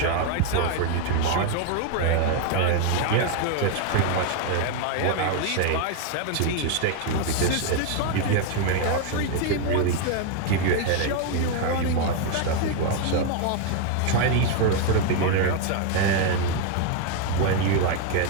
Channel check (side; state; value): both; different; correlation 0.00